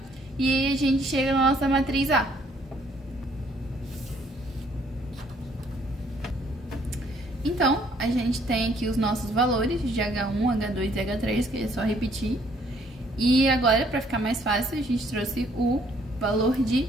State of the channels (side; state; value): both; normal; correlation 0.64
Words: e aí a gente chega na nossa matriz A. Então, a gente tem aqui os nossos valores de H1, H2 e H3, que é só repetir. E agora, para ficar mais fácil, a gente trouxe o valor de